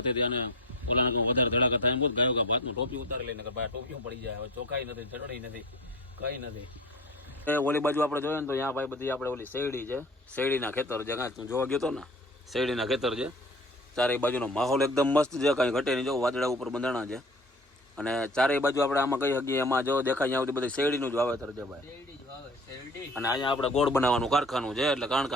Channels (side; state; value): both; normal; correlation 0.39